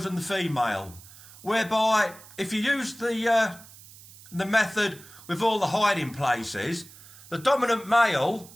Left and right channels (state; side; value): noise; right; hiss, 20 dB below the sound